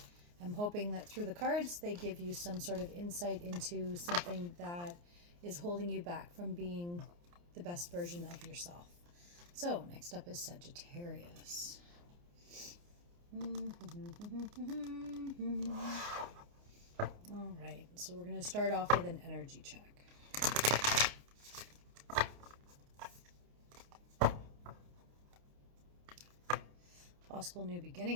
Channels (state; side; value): late; left; 29 ms